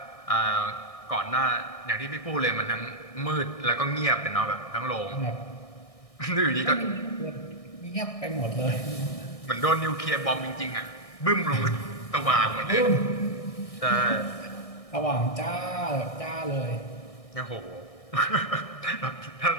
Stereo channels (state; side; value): late; right; 1.6 ms